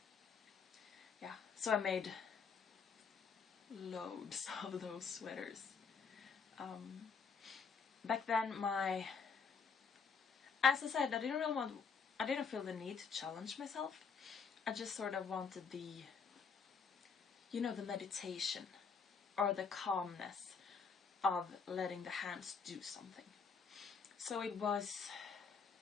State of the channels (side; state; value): right; quieter; 5.6 dB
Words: yeah. So I made loads of those sweaters. Back then, as I said, I didn't feel the need to challenge myself. I just sort of wanted the meditation or the calmness of letting the hands do something. So it was